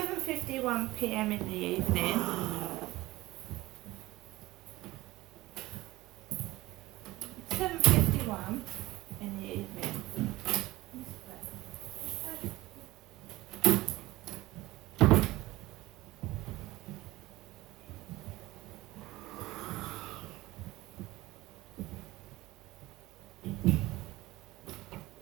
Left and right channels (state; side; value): quieter; left; 18.6 dB